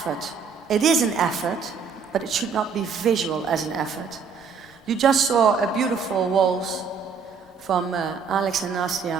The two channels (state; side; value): quieter; left; 5.8 dB